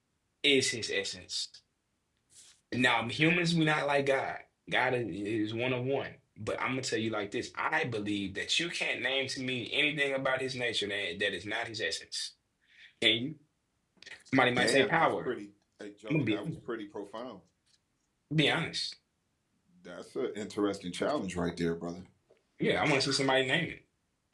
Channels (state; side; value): identical; both; correlation 1.00